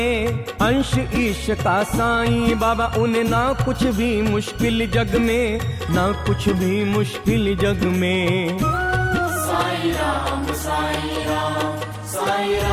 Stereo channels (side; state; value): both; identical; correlation 1.00